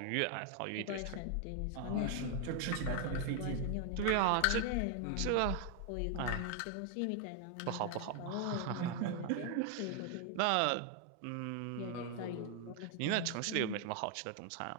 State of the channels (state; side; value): different; both; correlation 0.00